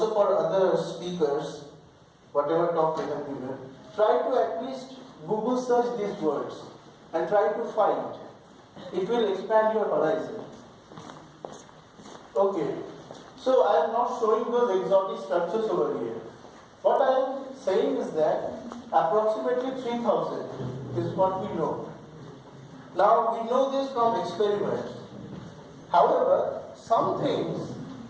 for other speakers, whatever talk they have given, try to at least Google search these words and try to find. It will expand your horizon. Okay, so I am not showing those exotic structures over here. What I am saying is that approximately 3000 is what we know. Now we know this from experiments. However, some things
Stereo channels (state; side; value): identical; both; correlation 1.00